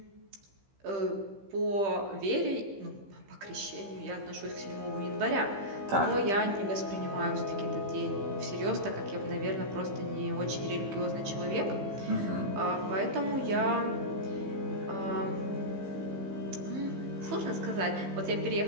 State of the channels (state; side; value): late; left; 15 ms